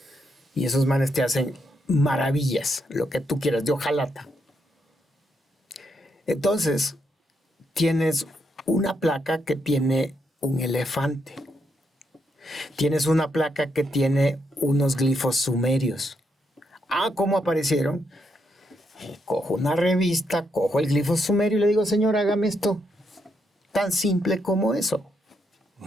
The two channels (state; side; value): normal; both; correlation 0.79